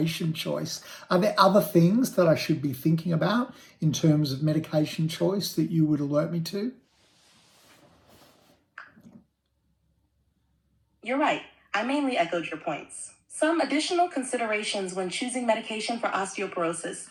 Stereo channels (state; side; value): identical; both; correlation 1.00